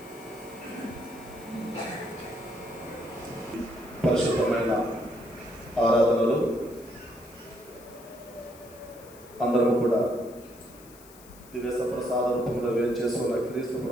పరిశుద్ధమైన ఆరాధనలు అందరం కూడా దివ్య సప్రసాద రూపంలో వేచేసుకున్న క్రీస్తు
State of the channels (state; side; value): noise; left; hiss, 22 dB below the sound